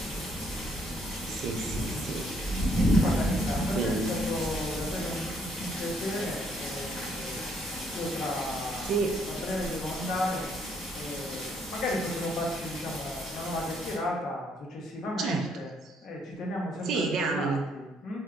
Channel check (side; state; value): both; normal; correlation 0.69